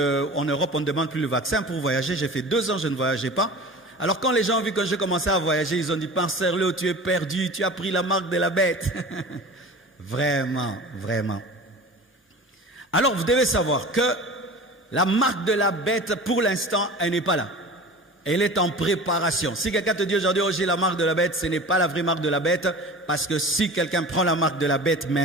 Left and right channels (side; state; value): both; normal; correlation 0.37